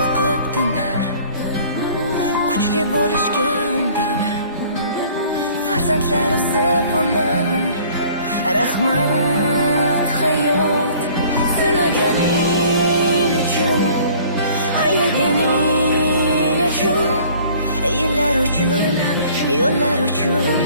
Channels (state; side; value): inverted; both; correlation -0.52